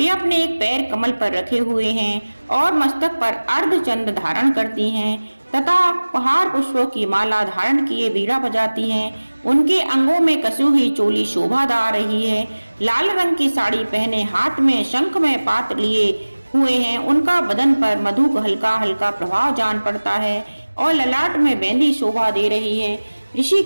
अपने एक पैर कमल पर रखे हुए हैं और मस्तक पर अर्धचंद्र धारण करती हैं तथा पहाड़ पुष्पों की माला धारण किए बीड़ा बजाती हैं। उनके अंगों में कसी हुई चोली शोभा दा रही है। लाल रंग की साड़ी पहने हाथ में शंख में पात लिए हुए हैं। उनका बदन पर मधु का हल्का हल्का प्रभाव जान पड़ता है और ललाट में मेहंदी शोभा दे रही है। ऋषि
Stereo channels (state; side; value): inverted; both; correlation -1.00